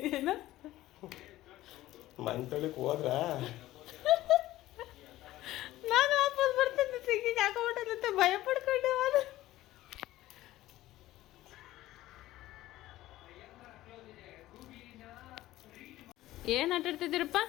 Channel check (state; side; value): quieter; right; 15.8 dB